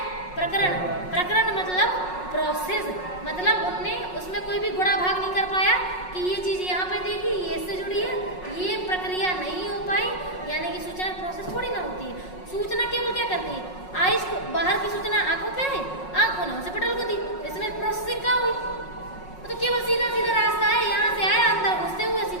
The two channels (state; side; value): late; right; 5.5 ms